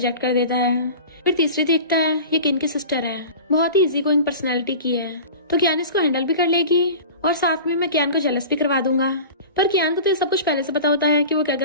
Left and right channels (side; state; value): both; inverted; correlation -0.37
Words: कर देता है। फिर तीसरी देखता है ये किन की सिस्टर है, बहुत ही इजी गोइंग पर्सनैलिटी की है, तो कियान इसको हैंडल भी कर लेगी और साथ में मैं कियान को जेलस भी करवा दूंगा। पर कियान को तो ये सब कुछ पहले से पता होता है कि वो क्या